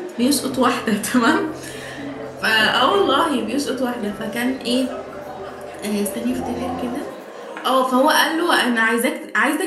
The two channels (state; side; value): identical; both; correlation 1.00